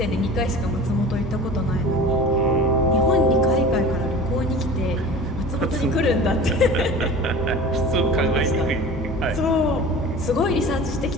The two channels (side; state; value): both; normal; correlation 0.38